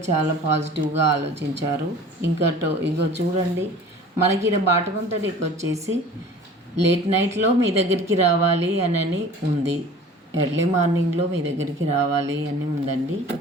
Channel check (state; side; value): normal; both; correlation 0.44